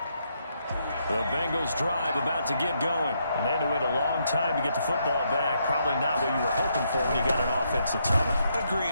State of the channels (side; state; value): both; inverted; correlation -0.76